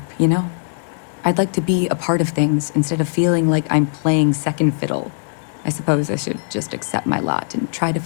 you know? I'd like to be a part of things instead of feeling like I'm playing second fiddle. I suppose I should just accept my lot and try to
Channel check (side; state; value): right; silent; digital silence